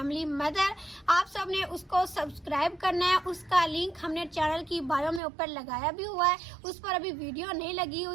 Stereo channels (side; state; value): left; drops out; at 5.2 s